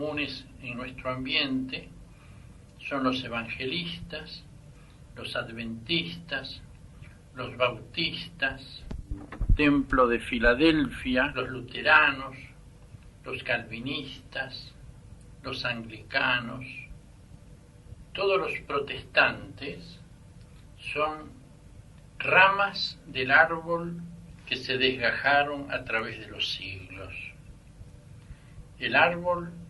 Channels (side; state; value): both; identical; correlation 1.00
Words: en nuestro ambiente son los evangelistas, los adventistas, los bautistas, Templo de Filadelfia, los luteranos, los calvinistas, los anglicanos. Todos los protestantes son ramas del árbol que se desgajaron a través de los siglos. El árbol